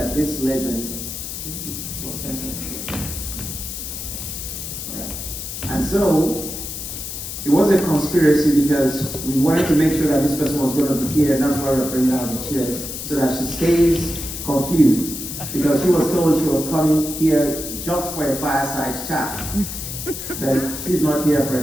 this legend was centered. All right. And so it was a conspiracy because we wanted to make sure that this person was going to be here, and that's why we're bringing out the chairs, so that she stays confused. Because she was told she was coming here just for a fireside chat. But she's not here for a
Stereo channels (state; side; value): noise; left; hiss, 7 dB below the sound